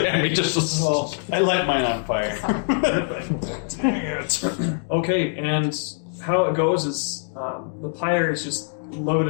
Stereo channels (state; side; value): silent; right; 63 dB below the other